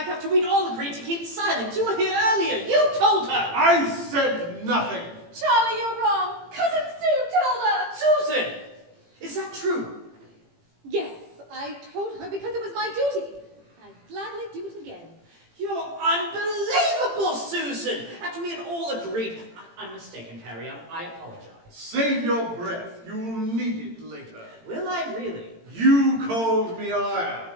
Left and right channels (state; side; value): late; left; 18 ms